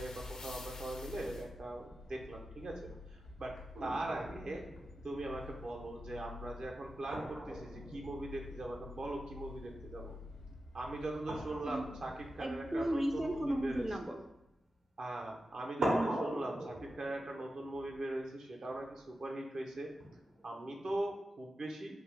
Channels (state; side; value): normal; both; correlation 0.91